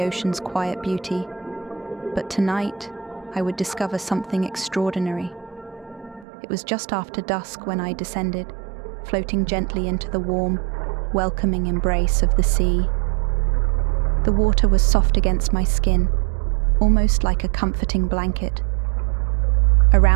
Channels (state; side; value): drops out; left; at 6.2 s